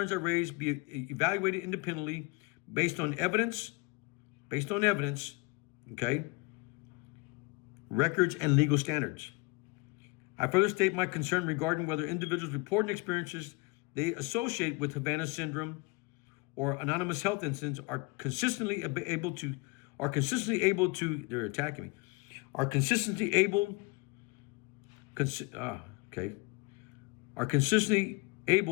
I raised be evaluated independently based on evidence, okay, records and legal standards. I further state my concern regarding whether individuals reporting experiences they associate with Havana syndrome or anonymous health incidents are consistently able to, they're attacking me, are consistently able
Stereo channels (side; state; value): right; quieter; 26.1 dB